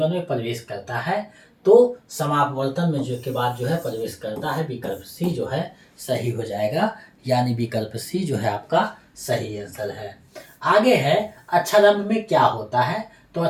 में प्रवेश करता है? तो समापवर्तन में जो के बाद जो है प्रवेश करता है। विकल्प सी जो है सही हो जाएगा, यानी विकल्प सी जो है आपका सही आंसर है। आगे है अक्षरारंभ में क्या होता है? तो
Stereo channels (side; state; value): both; identical; correlation 1.00